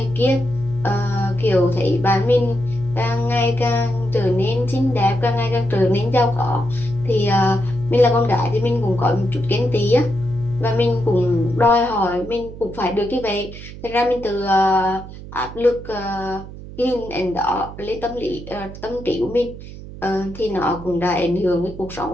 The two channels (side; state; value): right; noise; hum, 14 dB below the sound